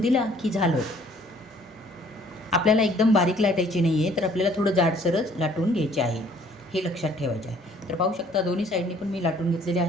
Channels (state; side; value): normal; both; correlation 0.58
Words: की झालं. आपल्याला एकदम बारीक लाटायची नाही आहे, तर आपल्याला थोडं जाडसरच लाटून घ्यायचे आहे, हे लक्षात ठेवायचे आहे. तर पाहू शकता दोन्ही साईडनी पण मी लाटून घेतलेले